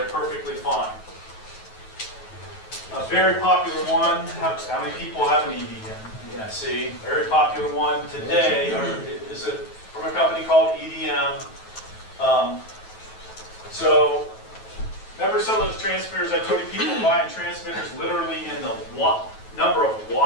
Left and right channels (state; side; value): late; right; 9.2 ms